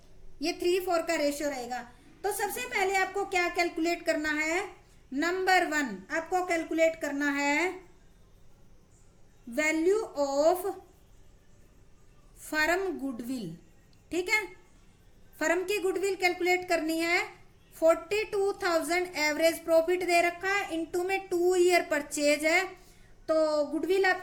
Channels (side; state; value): both; identical; correlation 1.00